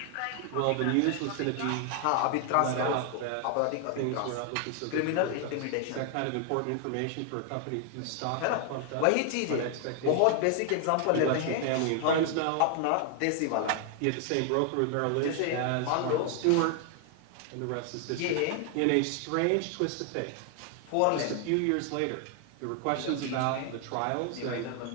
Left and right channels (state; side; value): different; both; correlation 0.00